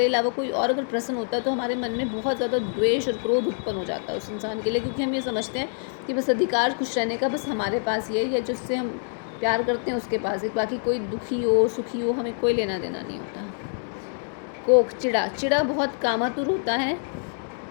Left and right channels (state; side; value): silent; right; digital silence